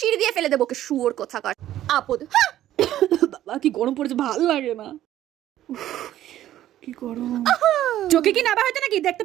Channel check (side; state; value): left; quieter; 12.9 dB